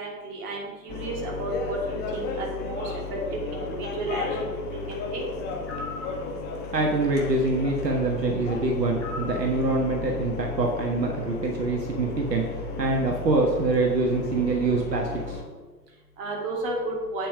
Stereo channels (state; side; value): normal; both; correlation 0.23